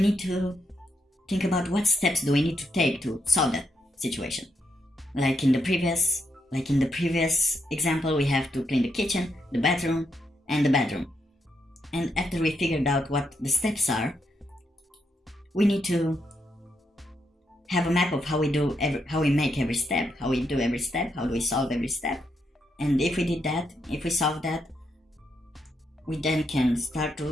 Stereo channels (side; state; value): both; normal; correlation 0.79